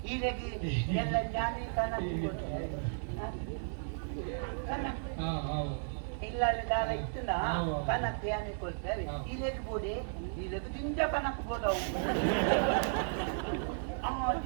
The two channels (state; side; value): silent; left; digital silence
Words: ಇಲ್ಲಗಿ ಎಲ್ಲ ಜಾಮಿ ಕನಕ್ ಬೋಡಿ ಕನಕ್ ಇಲ್ಲ ದಾಲ ಇತ್ತುನ ಕನಕ್ ಯಾನಿ ಕೊಡ್ತೇವೆ ಇಲ್ಲಗಿ ಬೋಡಿ ಇಲ್ಲಗಿ ದಿಂಜ ಕನಕ್ ಬೋಡವು